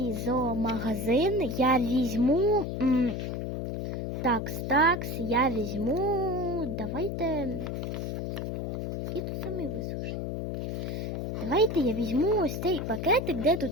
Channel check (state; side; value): noise; left; hum, 3 dB below the sound